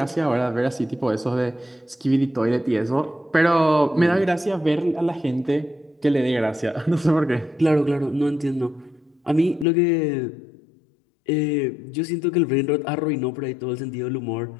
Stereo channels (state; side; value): drops out; right; at 9.7 s